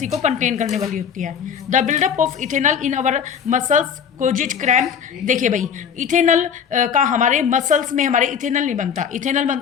को कंटेन करने वाली होती है। The buildup of ethanol in our muscles causes cramp. देखिए भाई, इथेनॉल का हमारे मसल्स में, हमारे इथेनॉल नहीं बनता, इथेनॉल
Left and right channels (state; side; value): quieter; right; 7.5 dB